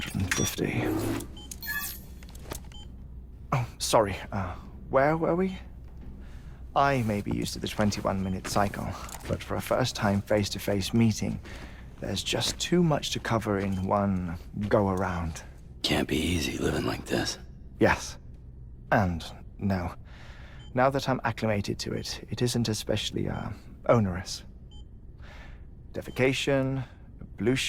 Oh, sorry. Where were we? I may be used to the 21-minute cycle, but for a first-time face-to-face meeting, there's just too much to cover in one go-around. Can't be easy living like this. Yes. And no. Now that I'm acclimated to it, it isn't especially, onerous. Defecation,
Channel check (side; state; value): both; identical; correlation 1.00